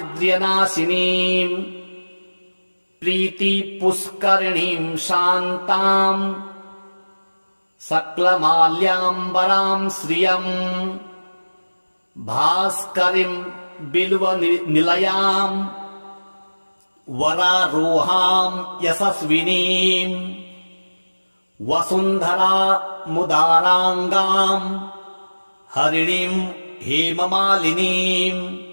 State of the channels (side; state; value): both; inverted; correlation -1.00